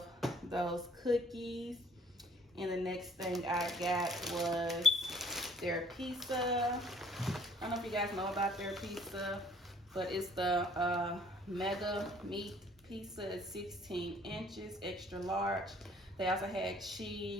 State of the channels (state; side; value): normal; both; correlation 0.57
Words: those cookies. And the next thing I got was their pizza. I don't know if you guys know about their pizza, but it's the mega meat pizza. It's 16 inches, extra large. They also had